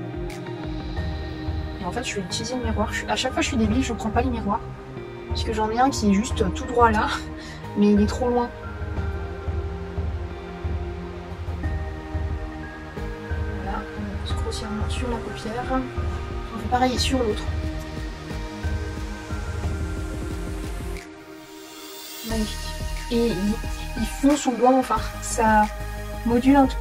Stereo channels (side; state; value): both; identical; correlation 1.00